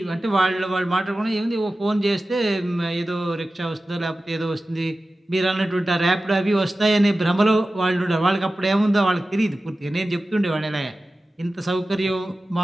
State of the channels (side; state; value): both; normal; correlation 0.95